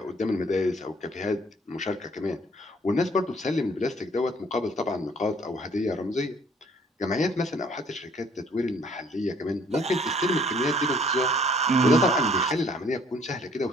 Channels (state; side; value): normal; both; correlation 0.60